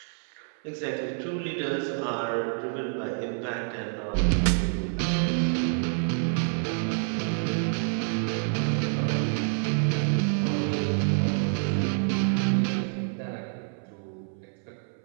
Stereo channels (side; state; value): left; silent; 60 dB below the other